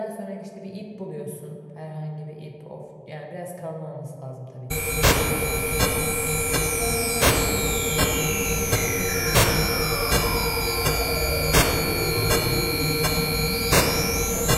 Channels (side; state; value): both; identical; correlation 1.00